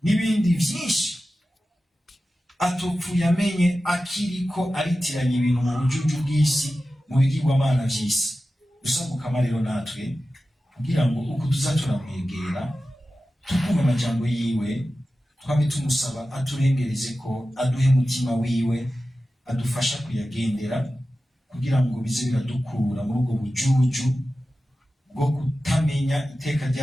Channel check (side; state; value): both; normal; correlation 0.94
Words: n'ibindi vyinshi atopfuye amenye, akiriko aritiranya ibintu mu bujuju bw'isi, mu bigirwamana vy'isi. Dusabukama rero natwe kugira ngo uko tuzaturamwegera, tukumva amajambo yiwe, twame tumusaba aturengereze ko aduhe mutima wiwe, adufasha kuyagendera, kugira ngo bize biradukura muri ubwo bujuju bwo kutamenya iteka